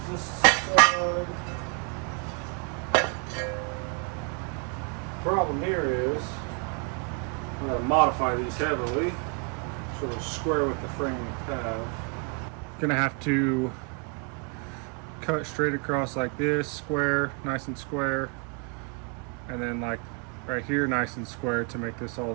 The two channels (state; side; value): quieter; left; 35.6 dB